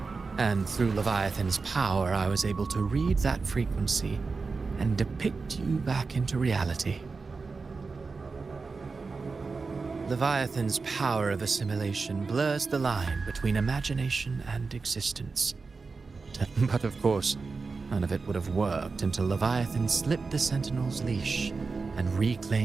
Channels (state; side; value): quieter; left; 4.4 dB